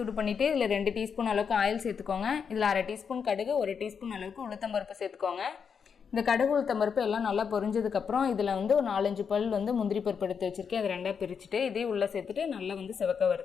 பண்ணிவிட்டு இதில் 2 டீஸ்பூன் அளவுக்கு ஆயில் சேர்த்துக்கோங்க. இதில் 1/2 டீஸ்பூன் கடுகு, 1 டீஸ்பூன் அளவுக்கு உளுத்தம்பருப்பு சேர்த்துக்கோங்க. இந்த கடுகு உளுத்தம்பருப்பு எல்லாம் நல்லா பொரிஞ்சதுக்கப்புறம் இதில் வந்து ஒரு 4-5 பல் வந்து முந்திரி பருப்பு எடுத்து வச்சுருக்கேன். அதை 2ஆக பிரிச்சுட்டு இதே உள்ளே சேர்த்துட்டு நல்லா வந்து சிவக்க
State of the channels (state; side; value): quieter; right; 6.6 dB